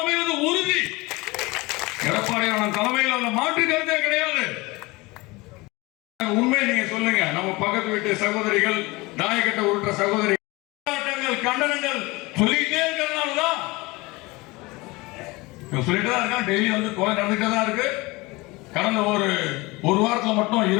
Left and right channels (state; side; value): quieter; right; 23.0 dB